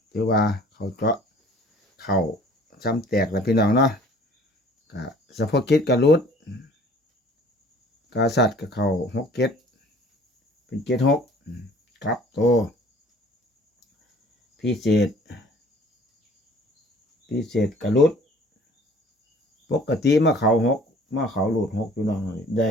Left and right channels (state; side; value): normal; both; correlation 0.51